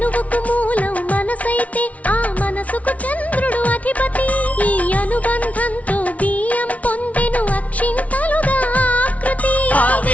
మూలం మనసైతే ఆ మనసుకు చంద్రుడు అధిపతి ఈ అనుబంధంతో బియ్యం పొందెను అక్షింతలుగా ఆకృతి ఆ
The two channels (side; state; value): right; late; 0.068 ms